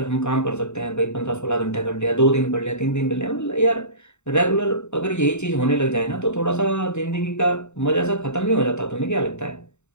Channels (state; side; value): late; right; 0.83 ms